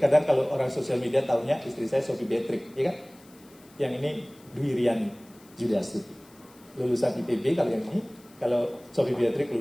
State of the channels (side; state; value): left; noise; hiss, 27 dB below the sound